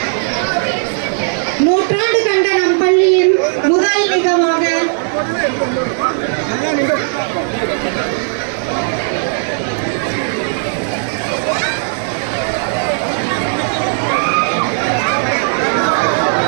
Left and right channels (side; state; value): left; silent; 59 dB below the other